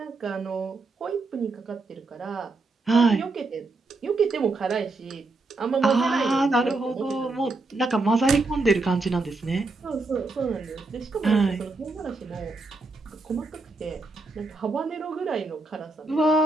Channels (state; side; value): quieter; left; 3.4 dB